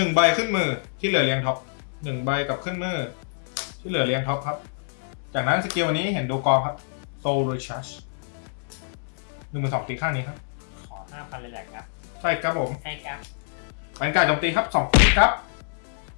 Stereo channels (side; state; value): right; silent; digital silence